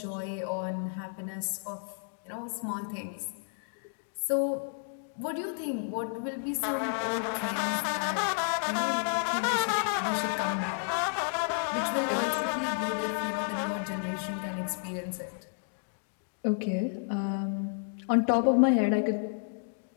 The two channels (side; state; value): right; silent; digital silence